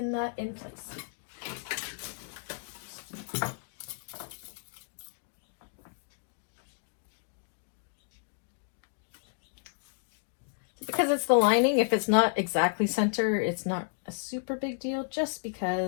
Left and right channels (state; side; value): silent; right; digital silence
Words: that in place. Because it's the lining, if it's not exactly center, it's not a super big deal, just